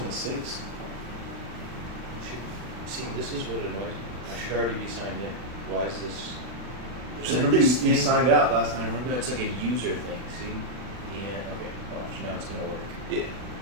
was 6. See, this is what annoys me. I should already be signed in. Why is this? There's like Remember this you thing. signed out last time, No, remember? it's like a user thing. See? Yeah. Okay. Watch. Now it's gonna work. Yeah.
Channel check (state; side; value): late; left; 40 ms